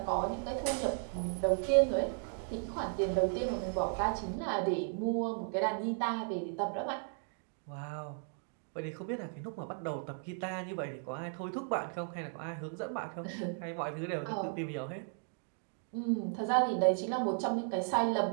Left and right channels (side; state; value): left; silent; 54 dB below the other